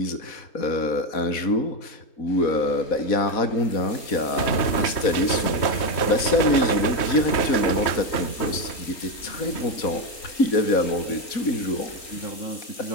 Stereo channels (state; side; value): late; right; 4.1 ms